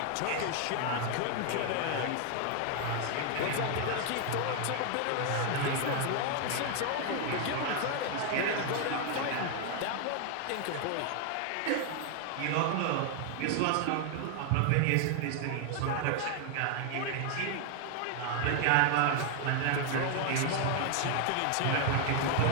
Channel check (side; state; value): both; different; correlation 0.00